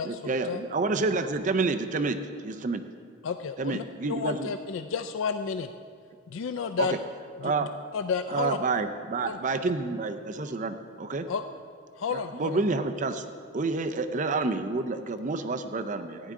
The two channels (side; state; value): both; normal; correlation 0.12